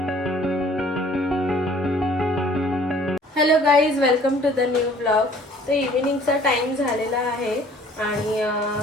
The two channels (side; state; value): both; normal; correlation 0.55